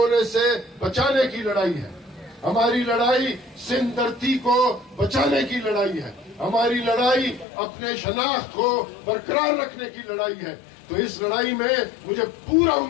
से बचाने की लड़ाई है। हमारी लड़ाई सिंध धरती को बचाने की लड़ाई है। हमारी लड़ाई अपने शनाख्त को बरकरार रखने की लड़ाई है। तो इस लड़ाई में मुझे पूरा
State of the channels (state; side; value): drops out; right; at 7.5 s